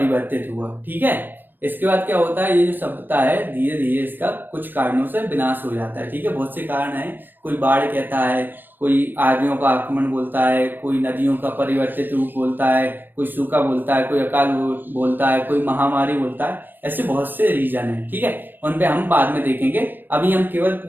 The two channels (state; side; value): late; left; 0.093 ms